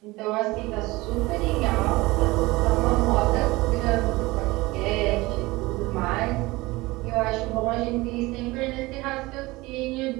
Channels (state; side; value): quieter; left; 21.1 dB